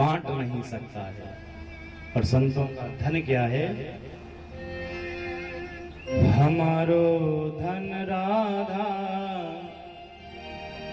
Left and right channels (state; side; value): identical; both; correlation 1.00